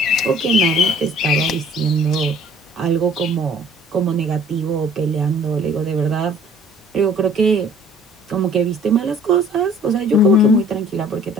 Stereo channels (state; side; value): normal; both; correlation 0.54